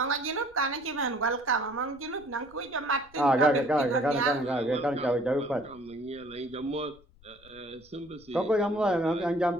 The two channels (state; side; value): noise; left; rumble, 26 dB below the sound